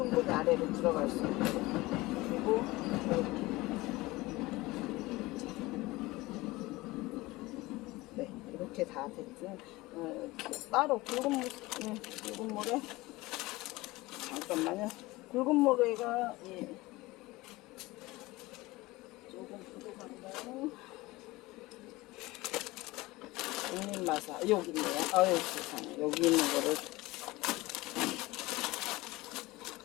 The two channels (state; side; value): quieter; right; 20.4 dB